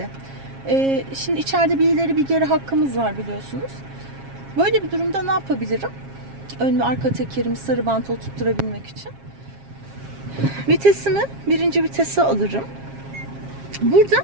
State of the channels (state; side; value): late; left; 7.4 ms